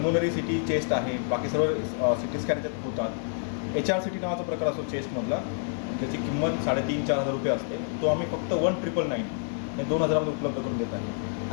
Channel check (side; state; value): right; silent; 56 dB below the other